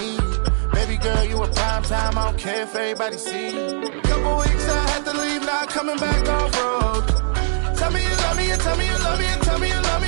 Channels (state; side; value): silent; left; digital silence